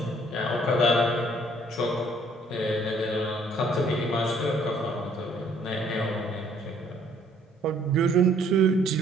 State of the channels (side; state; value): both; normal; correlation 0.62